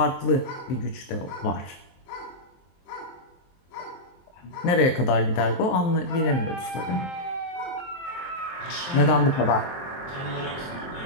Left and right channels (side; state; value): right; late; 23 ms